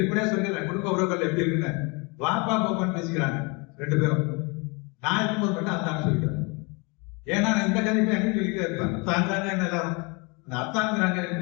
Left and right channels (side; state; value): right; quieter; 29.7 dB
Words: சொல்லிடுறேன், குடும்ப உறவுகள் எப்படி இருக்குன்னு வாப்பா பாப்பான்னு பேசிக்கிறாங்க 2 பேரும். நான் இருக்கும்போது மட்டும் அத்தான்னு சொல்லிக்கிறேன். ஏன்னா நான் இந்த கதைப்பை எங்க சொல்லிட்டே இருப்பேன், அத்தாங்க எல்லாரும் அத்தாங்கிறாங்க